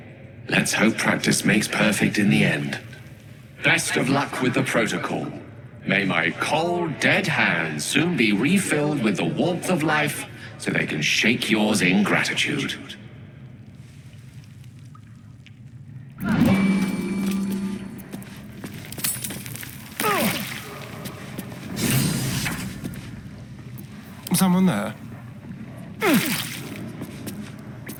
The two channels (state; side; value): identical; both; correlation 1.00